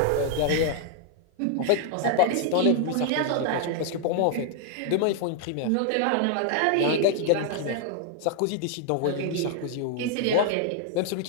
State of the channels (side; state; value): both; different; correlation 0.00